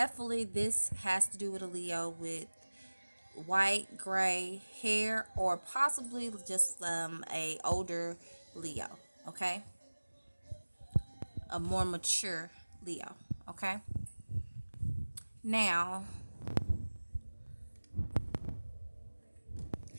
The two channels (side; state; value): both; inverted; correlation -1.00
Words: this has to do with a Leo with white, gray hair, or possibly just a older Leo, okay? A more mature Leo, okay? Now,